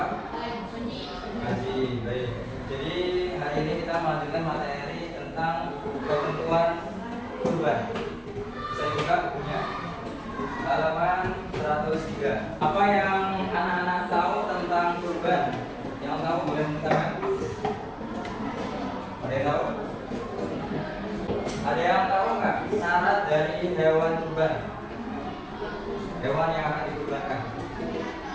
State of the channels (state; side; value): identical; both; correlation 1.00